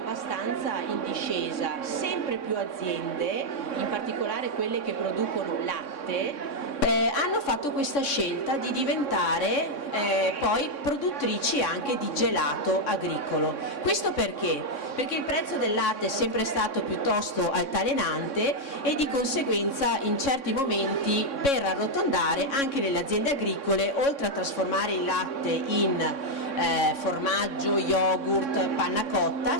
in discesa, sempre più aziende, in particolare quelle che producono latte, hanno fatto questa scelta di diventare poi produttrici anche di gelato agricolo. Questo perché? Perché il prezzo del latte è sempre stato piuttosto altalenante e di conseguenza in certi momenti, per arrotondare, anche nelle aziende agricole, oltre a trasformare il latte in formaggio, yogurt, panna cotta,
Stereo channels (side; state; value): right; late; 3.6 ms